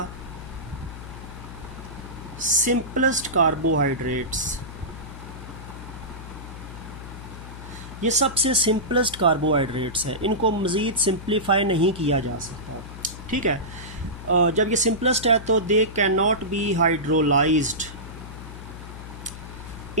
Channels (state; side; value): noise; left; hum, 12 dB below the sound